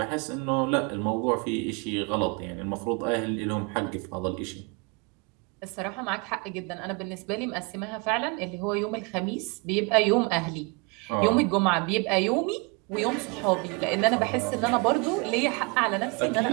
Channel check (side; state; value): left; quieter; 29.8 dB